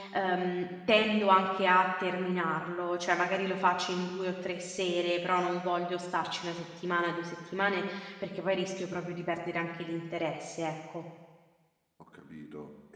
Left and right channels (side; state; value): both; identical; correlation 1.00